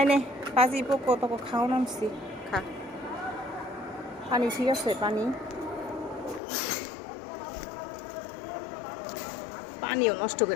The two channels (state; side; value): drops out; right; at 6.4 s